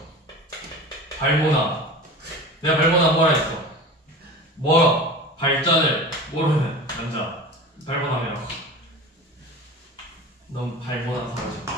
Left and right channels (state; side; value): normal; both; correlation 0.34